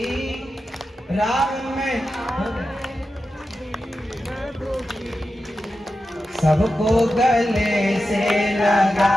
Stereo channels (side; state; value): both; normal; correlation 0.91